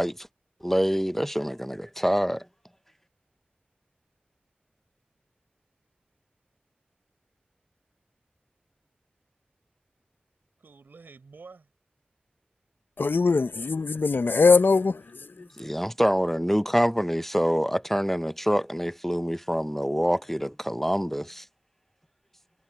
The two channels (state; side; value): normal; both; correlation 0.95